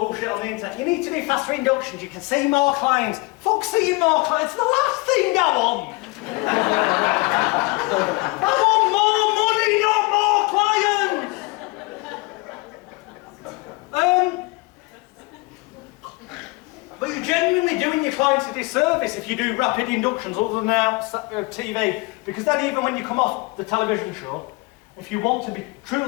on the internet. You need to do faster inductions. You can see more clients. Fuck seeing more clients. It's the last thing I want. I want more money, not But you're genuinely doing your clients a disservice if you do rapid inductions other than out TV, because then even when you come off the television show, if you want to be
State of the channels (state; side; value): quieter; right; 24.7 dB